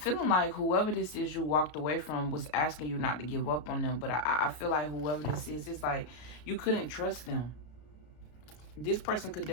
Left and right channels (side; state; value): right; late; 33 ms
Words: like whoever this is you walked away from was asking you not to give up on them. But I feel like whoever this is, it's like you couldn't trust them. This person could